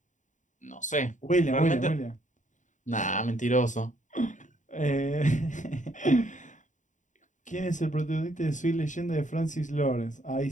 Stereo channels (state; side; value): late; right; 0.36 ms